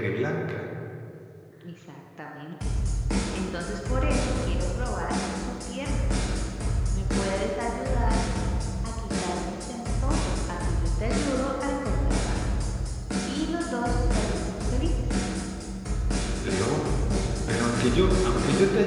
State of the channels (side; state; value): both; identical; correlation 1.00